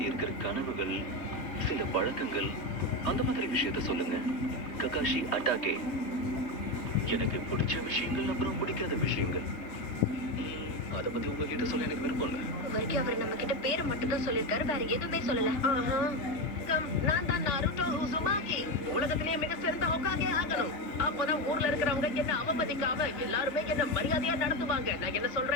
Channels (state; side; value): late; right; 3.5 ms